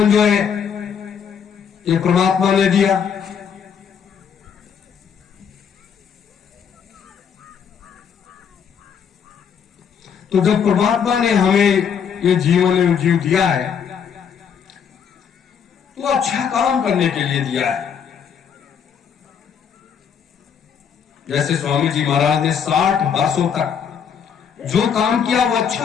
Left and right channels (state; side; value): quieter; right; 7.4 dB